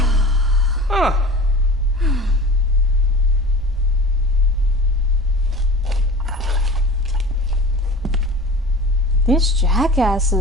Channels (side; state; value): both; normal; correlation 0.37